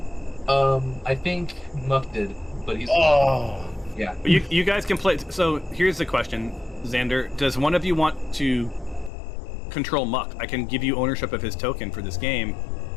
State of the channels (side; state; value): right; drops out; at 9.1 s